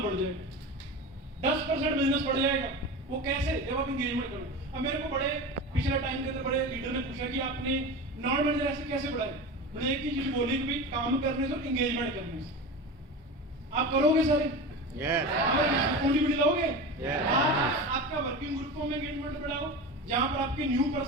बढ़ जाएगा, 10% बिजनेस बढ़ जाएगा। वो कैसे? जब आप एंगेजमेंट करो। अब मेरे को बड़े पिछले टाइम के अंदर बड़े लीडर ने पूछा कि आपने नॉन मैनेजर ऐसे कैसे बढ़ाए? मैंने एक ही चीज बोली कि भाई काम करने से और एंगेजमेंट करने से। आप करोगे सारे? कंट्रीब्यूट लाओगे? आपका वर्किंग ग्रुपों में एंगेजमेंट बढ़ाओ, जहां पर आपके न्यू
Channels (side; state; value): both; normal; correlation 0.28